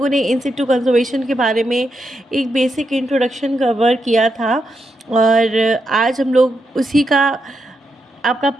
ने इन सिटू कंजर्वेशन के बारे में एक बेसिक इंट्रोडक्शन कवर किया था और आज हम लोग उसी का आपका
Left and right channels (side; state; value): both; normal; correlation 0.84